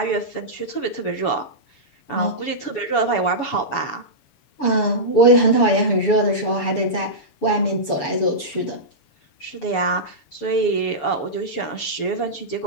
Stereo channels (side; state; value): right; late; 7.0 ms